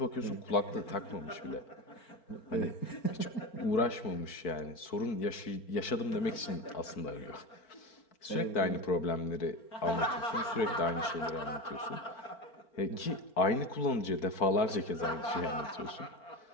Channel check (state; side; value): late; right; 4.6 ms